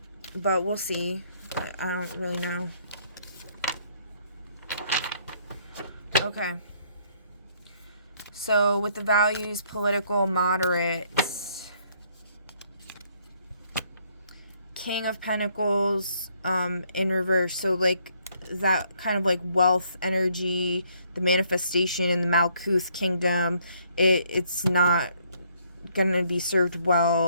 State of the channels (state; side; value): inverted; both; correlation -0.67